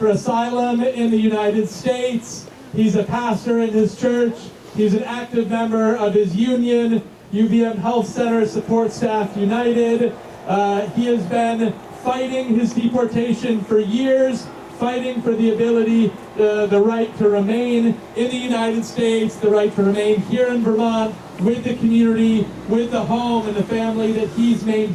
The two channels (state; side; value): identical; both; correlation 1.00